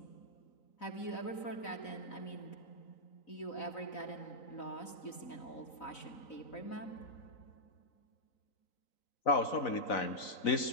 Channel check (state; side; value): late; right; 4.0 ms